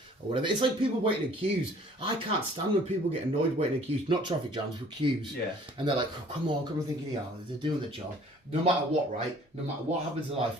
or whatever. It's like people waiting in queues. I can't stand when people get annoyed waiting in queues. Not traffic jams, but queues. Yeah. And they're like, oh, come on, thinking, yeah, they're doing the job. No matter what, right? No matter what happens in life,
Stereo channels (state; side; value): normal; both; correlation 0.54